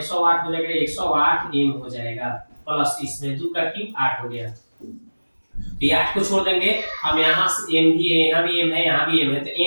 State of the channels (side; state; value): both; inverted; correlation -1.00